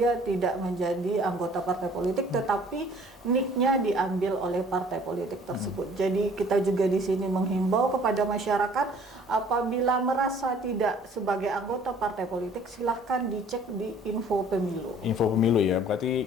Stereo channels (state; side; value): normal; both; correlation 0.54